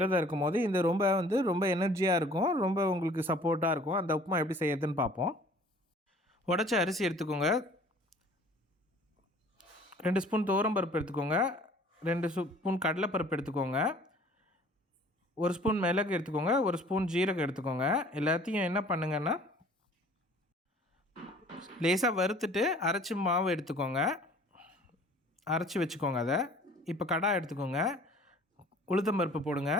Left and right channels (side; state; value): both; normal; correlation 0.51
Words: இருக்கும் போது இந்த ரொம்ப எனர்ஜியாக இருக்கும், ரொம்ப உங்களுக்கு சப்போர்ட்டாக இருக்கும். அந்த உப்புமா எப்படி செய்யறதுன்னு பார்ப்போம். உடச்ச அரிசி எடுத்துக்கோங்க, 2 ஸ்பூன் துவரம்பருப்பு எடுத்துக்கோங்க, 2 ஸ்பூன் கடலைப்பருப்பு எடுத்துக்கோங்க, 1 ஸ்பூன் மிளகு எடுத்துக்கோங்க, 1 ஸ்பூன் ஜீரகம் எடுத்துக்கோங்க. எல்லாத்தையும் என்ன பண்ணுங்கன்னா லேசாக வறுத்துட்டு அரைச்சி மாவு எடுத்துக்கோங்க, அரைச்சி வச்சுக்கோங்க. அதை இப்போ கடாய் எடுத்துக்கோங்க, உளுத்தம் பருப்பு போடுங்க,